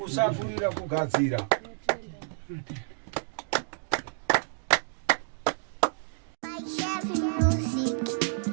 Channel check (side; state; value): left; silent; digital silence